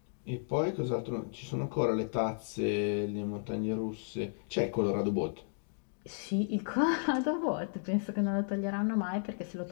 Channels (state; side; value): silent; right; digital silence